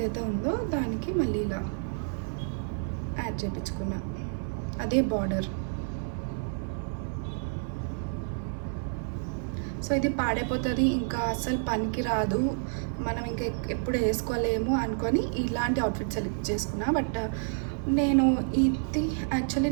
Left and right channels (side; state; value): left; silent; 55 dB below the other